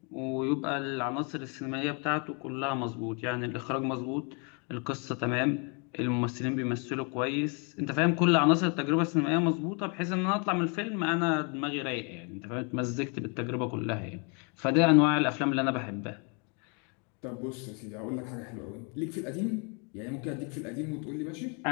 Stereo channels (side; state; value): right; quieter; 36.0 dB